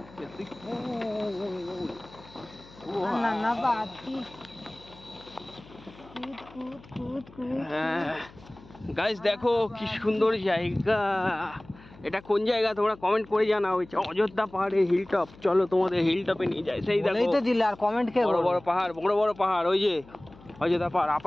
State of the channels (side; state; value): left; noise; hum, 22 dB below the sound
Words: হ্যাঁ গাইস দেখো কি সুন্দর জায়গা। এটা কোন জায়গা তোমরা কমেন্ট করে জানাও। অযোধ্যা পাহাড়ে হিল টপ, চলো তোমাদের হিল টপে নিয়ে যাই। সেই দেখো তো দিলে, আর কমেন্ট কে? বড় বড় পাহাড়, বড় বড় পাহাড়, ওই যে অযোধ্যা পাহাড়।